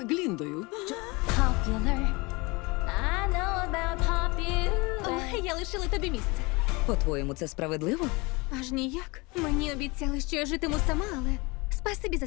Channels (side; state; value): right; quieter; 25.7 dB